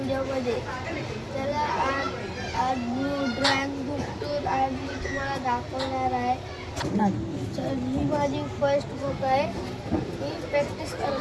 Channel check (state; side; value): identical; both; correlation 1.00